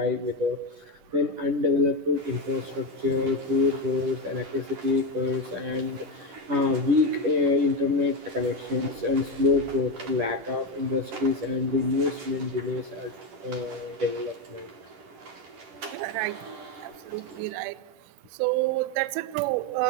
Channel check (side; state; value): left; late; 10 ms